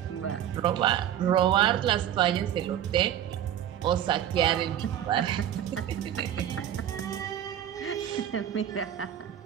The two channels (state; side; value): quieter; left; 10.6 dB